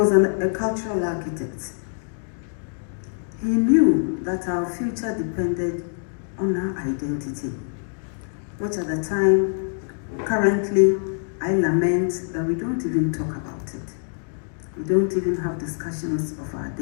a cultural architect. He knew that our future depended on our identity. which at the time, currently, I lament that we don't even talk about it. We don't even have discussions of our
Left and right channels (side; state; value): right; silent; digital silence